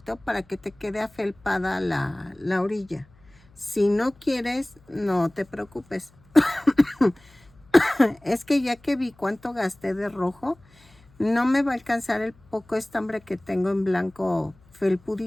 para que te quede afelpada la orilla. Si no quieres, no te preocupes. Es que ya que vi cuánto gasté de rojo, no me va a alcanzar el poco estambre que tengo en blanco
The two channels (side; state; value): left; noise; hum, 29 dB below the sound